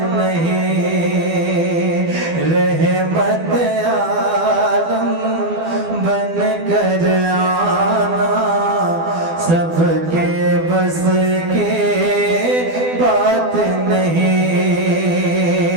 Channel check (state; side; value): late; left; 12 ms